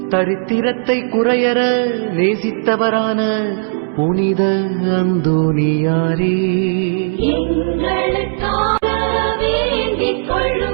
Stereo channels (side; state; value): left; silent; 69 dB below the other